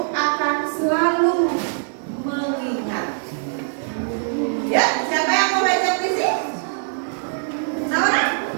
akan selalu mengingat. Ya, siapa yang mau baca puisi? Naura?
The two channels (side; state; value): left; silent; digital silence